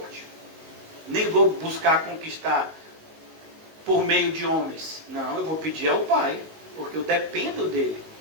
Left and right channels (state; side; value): late; left; 19 ms